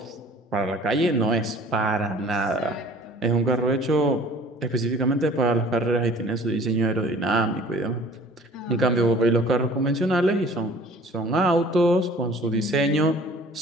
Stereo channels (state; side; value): normal; both; correlation 0.49